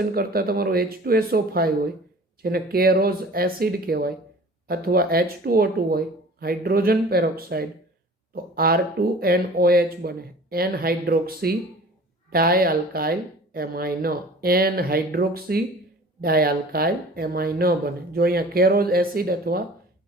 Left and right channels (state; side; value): normal; both; correlation 0.45